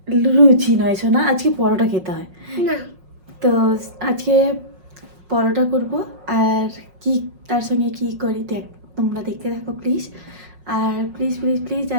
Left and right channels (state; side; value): late; left; 5.5 ms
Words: লুচি নয় শোনা, আজকে পরোটা খেতে হয় না। তো আজকে পরোটা করব, আর কি তার সঙ্গে কি করি তোমরা দেখতে থাকো প্লিজ। আর প্লিজ প্লিজ প্লিজ